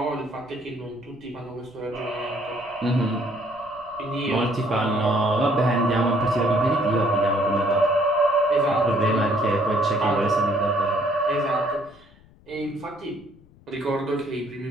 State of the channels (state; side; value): noise; left; rumble, 27 dB below the sound